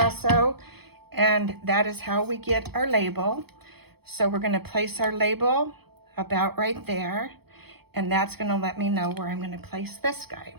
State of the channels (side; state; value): left; late; 0.97 ms